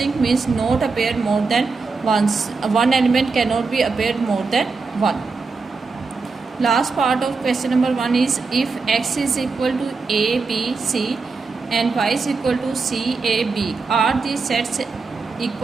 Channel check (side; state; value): left; quieter; 4.4 dB